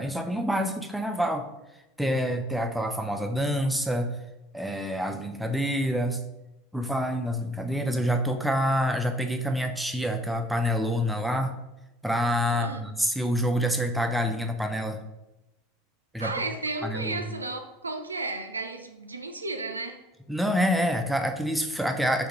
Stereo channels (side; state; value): both; normal; correlation 0.61